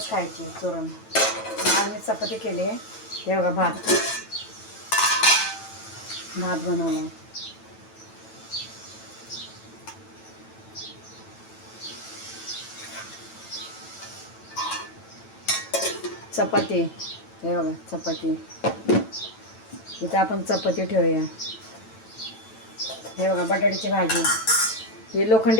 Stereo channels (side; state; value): right; late; 9.1 ms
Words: खायची चुरून. आज मी चपाती केली आहे. हे बघा भात बनवला. चपाती हे बघा चपाती. इथे आपण चपाती ठेवूया. हे बघा बटाट्याची भाजी. हे